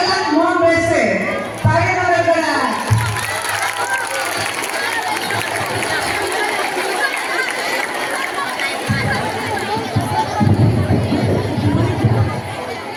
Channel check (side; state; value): both; identical; correlation 1.00